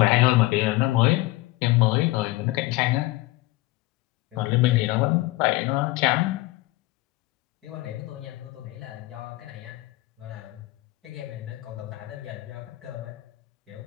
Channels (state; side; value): quieter; right; 19.1 dB